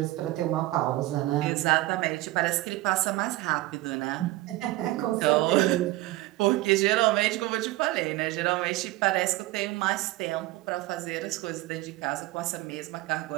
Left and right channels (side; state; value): left; quieter; 18.0 dB